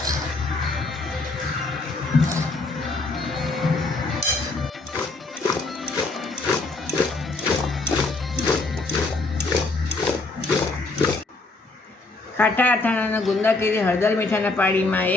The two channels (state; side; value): quieter; right; 3.4 dB